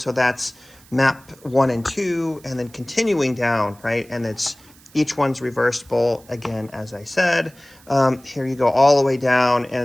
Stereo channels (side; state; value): right; noise; hiss, 26 dB below the sound